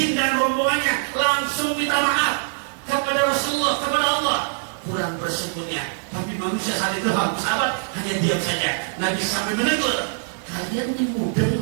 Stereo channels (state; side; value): silent; left; digital silence